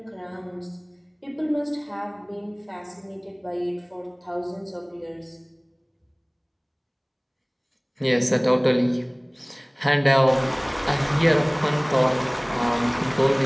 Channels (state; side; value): identical; both; correlation 1.00